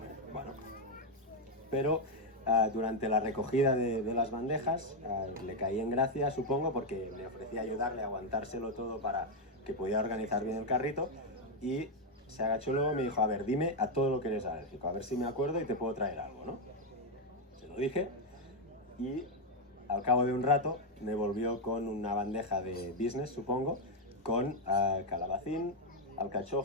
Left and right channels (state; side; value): normal; both; correlation 0.03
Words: Bueno, pero durante la recogida de las bandejas le caí en gracia, supongo, porque le ofrecí ayudarle a aguantárselo todo para que pudiera organizar bien el carrito y se agachó luego y me dijo, a ver, dime a todo lo que eres alérgico, a ver si me acuerdo y te puedo traer algo, ¿no? Se lo dije y al cabo de un rato me volvió con una bandeja de business, supongo, con calabacín,